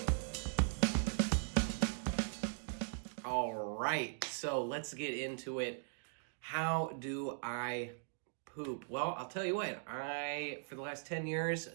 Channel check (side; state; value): left; silent; digital silence